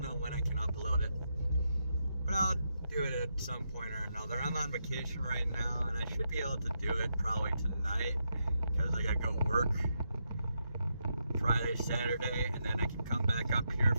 when I can upload it, but I'll do it at some point or another. I'm on vacation right now, and I should be able to do it probably tonight because I gotta go work Friday, Saturday, and then I can come back up here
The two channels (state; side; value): inverted; both; correlation -0.82